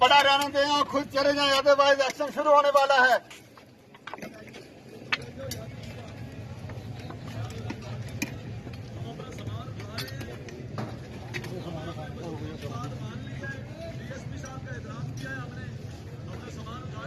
पड़ा रहने दें और खुद चले जाएं, अदरवाइज एक्शन शुरू होने वाला है।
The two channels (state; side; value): identical; both; correlation 1.00